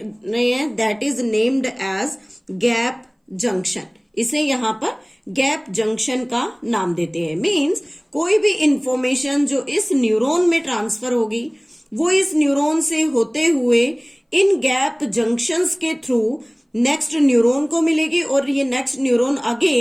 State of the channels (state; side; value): identical; both; correlation 1.00